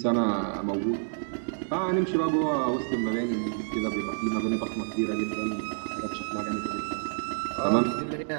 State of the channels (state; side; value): silent; left; digital silence